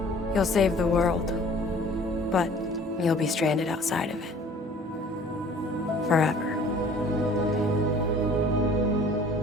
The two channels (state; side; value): normal; both; correlation 0.51